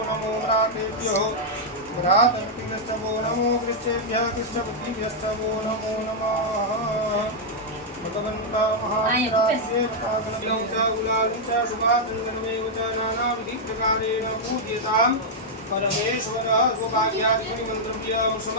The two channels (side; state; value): both; normal; correlation -0.04